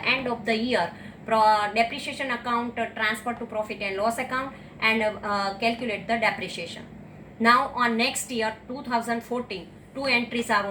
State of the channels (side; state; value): both; identical; correlation 1.00